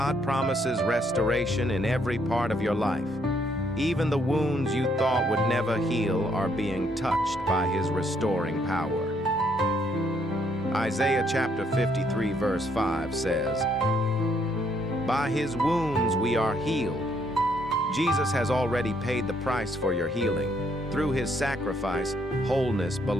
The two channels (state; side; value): normal; both; correlation 0.70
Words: promises restoration in every part of your life. Even the wounds you thought would never heal are being touched by His restoring power. Isaiah chapter 53, verse 5 says, "By His wounds we are healed." Jesus has already paid the price for your healing. Through His sacrifice, wholeness